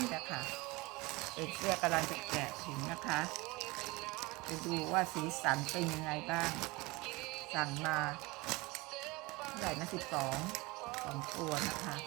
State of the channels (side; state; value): left; quieter; 23.5 dB